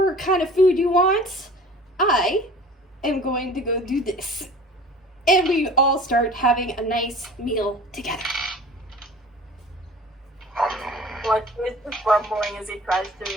kind of food you want. I am going to go do this. And we all start having a nice meal together. Like he's just grumbling as he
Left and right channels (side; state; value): both; normal; correlation 0.44